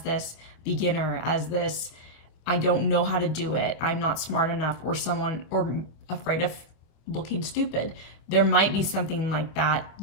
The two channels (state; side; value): late; right; 25 ms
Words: this beginner, as this, I don't know how to do it, I'm not smart enough, or afraid of looking stupid. There might be something like that